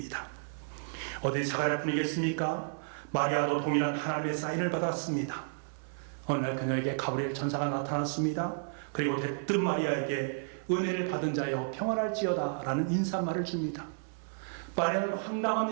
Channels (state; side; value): silent; left; 56 dB below the other